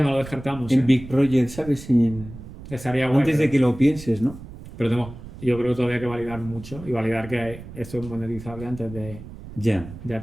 no lo descartamos. Big Project, ¿sabes? Estaría guay, Antes de pero- que lo pienses, ¿no? Pero yo creo que todavía hay que validar mucho y validar que esto es monetizable antes Ya. de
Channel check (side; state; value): right; noise; rumble, 14 dB below the sound